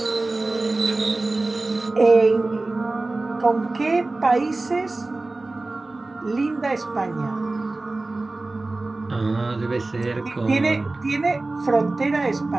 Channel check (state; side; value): quieter; left; 3.1 dB